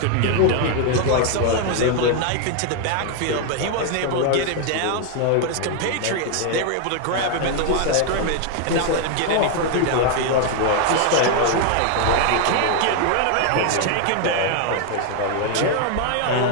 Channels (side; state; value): both; different; correlation 0.00